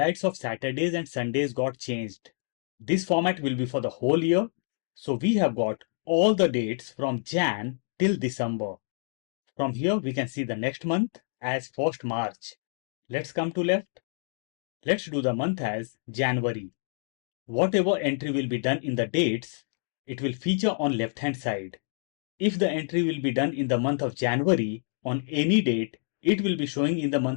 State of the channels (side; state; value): right; silent; 60 dB below the other